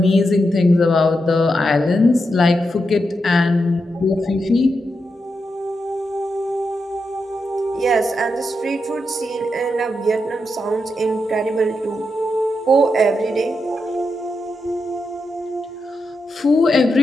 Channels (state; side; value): normal; both; correlation 0.85